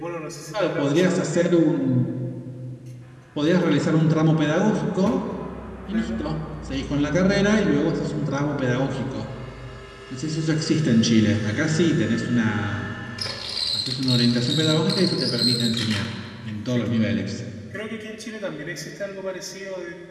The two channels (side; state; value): both; identical; correlation 1.00